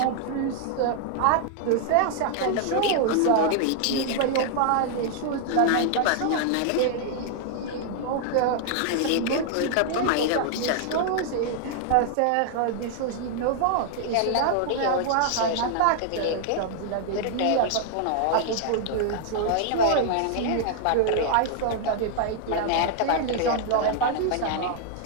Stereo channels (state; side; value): different; both; correlation -0.01